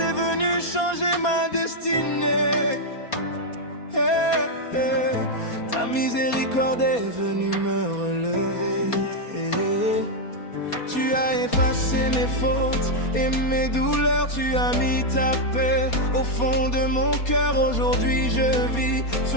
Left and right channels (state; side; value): late; right; 4.2 ms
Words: venue changer ma destinée. Hey, hey. Ta miséricorde est venue me relever. Tu as effacé mes fautes et mes douleurs, tu as mis ta paix au fond de mon cœur. Aujourd'hui je vis